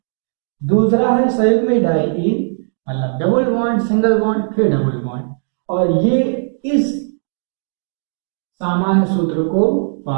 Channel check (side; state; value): left; silent; digital silence